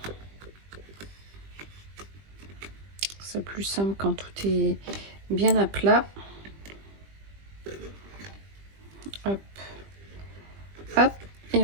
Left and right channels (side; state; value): left; late; 20 ms